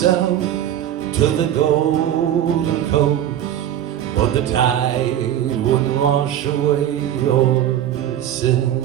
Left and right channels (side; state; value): left; quieter; 11.2 dB